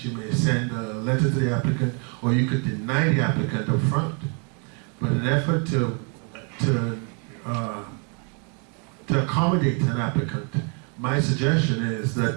you may send a letter to the applicant, or you could deny the applicant up front. But in an effort to accommodate an applicant, my suggestion is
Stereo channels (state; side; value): quieter; left; 37.9 dB